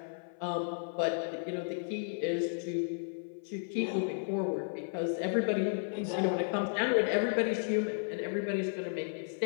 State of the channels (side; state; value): right; silent; 55 dB below the other